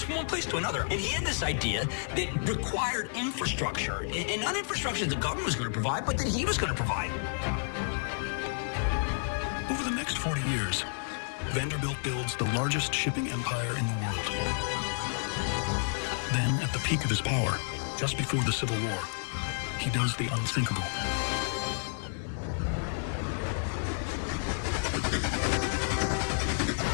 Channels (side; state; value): right; silent; digital silence